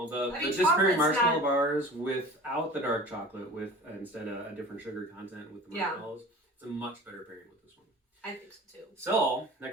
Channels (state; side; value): normal; both; correlation 0.39